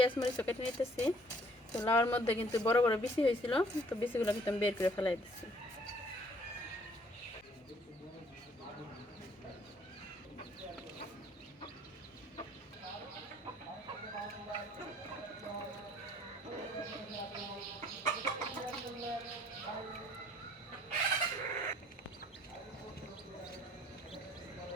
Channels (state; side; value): normal; both; correlation 0.60